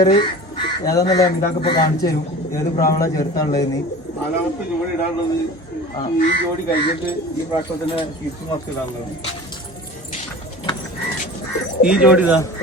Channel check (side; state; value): both; normal; correlation 0.38